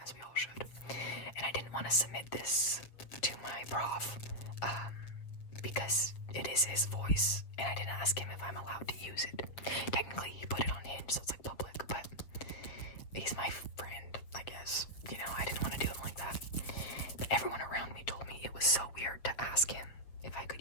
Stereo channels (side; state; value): right; late; 7.5 ms